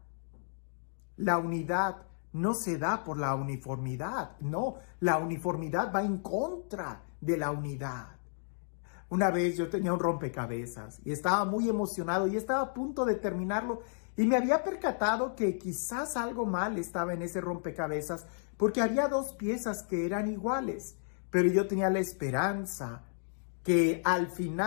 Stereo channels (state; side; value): silent; right; digital silence